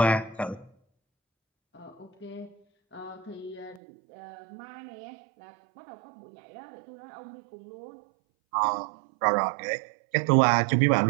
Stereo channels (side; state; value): left; drops out; at 3.8 s